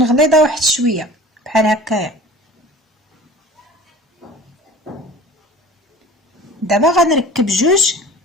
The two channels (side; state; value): both; normal; correlation 0.42